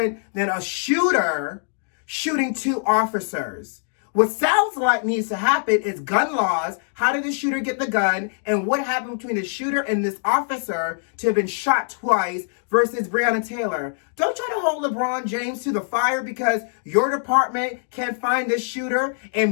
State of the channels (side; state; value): right; silent; digital silence